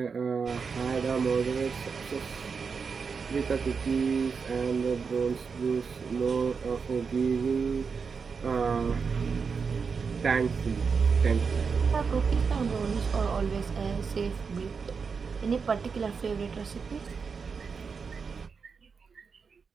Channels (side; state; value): left; quieter; 5.5 dB